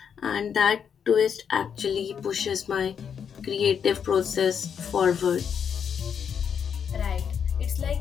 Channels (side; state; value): right; quieter; 7.5 dB